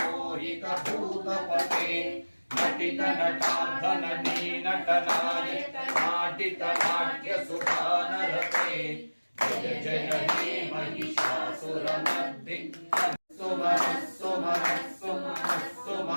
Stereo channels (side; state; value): both; inverted; correlation -1.00